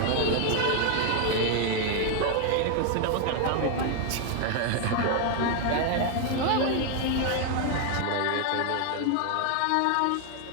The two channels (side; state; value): both; different; correlation 0.00